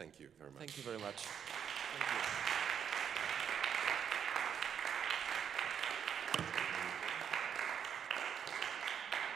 you very much. Thank you very much.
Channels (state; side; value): quieter; left; 8.1 dB